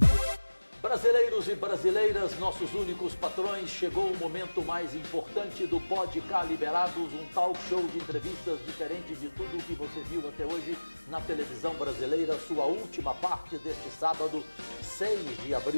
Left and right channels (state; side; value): inverted; both; correlation -1.00